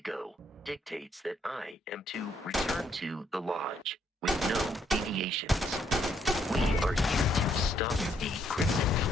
dictates that I am to return to the Lodge with no deviations. We are here to stop the Crimson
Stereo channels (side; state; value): both; normal; correlation 0.70